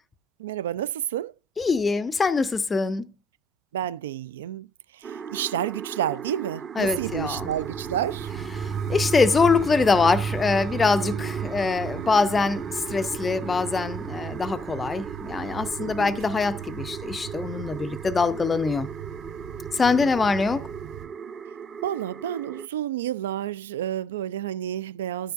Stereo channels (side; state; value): both; normal; correlation 0.67